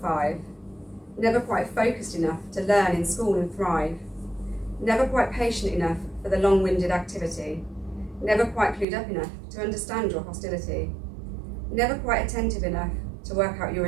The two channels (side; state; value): left; drops out; at 8.8 s